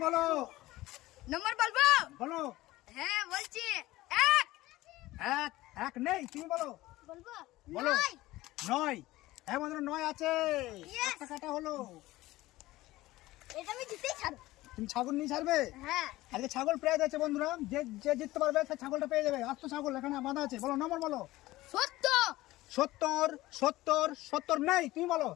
বলো। নম্বর বলবো? বলো। হ্যাঁ বলছি 1 এক এক নেই, তুমি বলো। বলবো? বলো। 9 9 হ্যাঁ বন্ধুরা 9 আছে। Yes! একটা কাটা হলো। এটা আমি জিতেই ছাড়বো। তুমি ছাগল নিয়ে ছাড়বে? হ্যাঁ। আজকে ছাগল প্রাইজ আছে বন্ধুরা, যে যে জিততে পারবে সে ছাগলটা পেয়ে যাবে। আর তো ছাগল এখানে বাঁধা আছে। বলো নম্বর বলো। 70 70 70 70 নেই, তুমি বলো।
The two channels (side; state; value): right; quieter; 17.7 dB